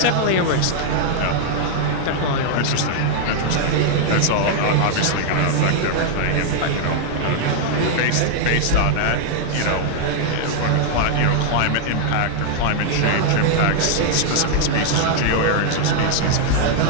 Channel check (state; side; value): different; both; correlation -0.01